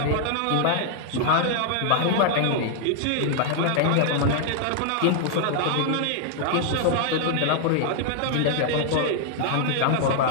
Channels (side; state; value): both; different; correlation 0.00